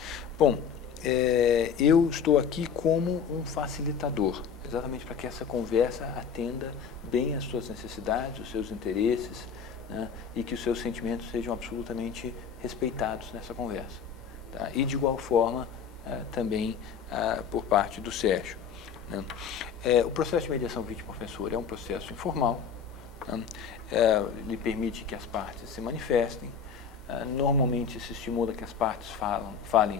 Bom, eu estou aqui como um facilitador, exatamente para que essa conversa atenda bem às suas necessidades, os seus interesses, né, e que os seus sentimentos sejam absolutamente respeitados nessa conversa. Tá? E, de igual forma, também por parte do Sérgio. Né? O processo de mediação vítima-ofensor é um processo informal, né? Ele permite que as partes se manifestem, normalmente se estimula que as partes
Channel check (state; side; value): quieter; right; 6.8 dB